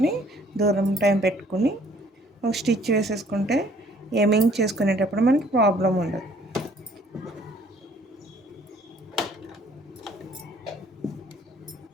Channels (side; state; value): both; normal; correlation 0.59